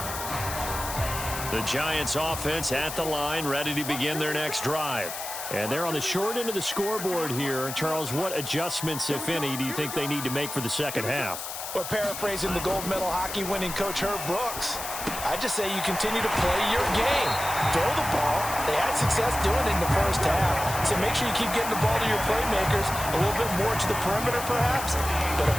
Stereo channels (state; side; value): noise; left; hiss, 7 dB below the sound